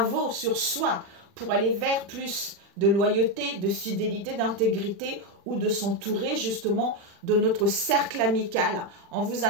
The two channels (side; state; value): left; late; 40 ms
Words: sur soi pour aller vers plus de loyauté, de fidélité, d'intégrité ou de s'entourer justement de notre cercle amical. On vous